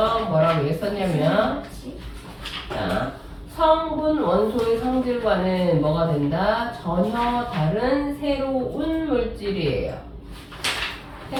뭐라고 했었냐면, 자, 성분 원소의 성질과는 뭐가 된다? 전혀 다른 새로운 물질이에요.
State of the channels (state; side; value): identical; both; correlation 1.00